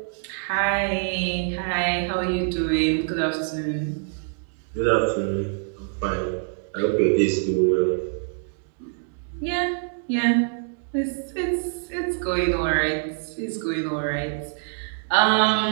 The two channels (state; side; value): silent; left; digital silence